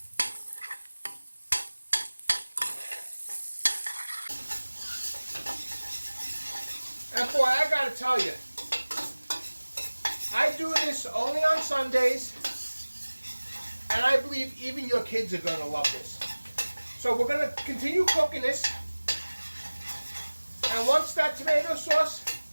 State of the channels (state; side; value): inverted; both; correlation -1.00